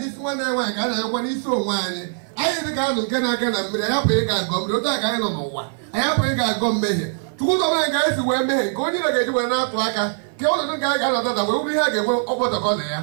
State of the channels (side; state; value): left; silent; 56 dB below the other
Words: one I want, and when he's so whiny. I think I can I have a gum, I don't know what. I have a gum me. Two of my guys who were made, going to get you an outwaka, kill the guy that will be having over the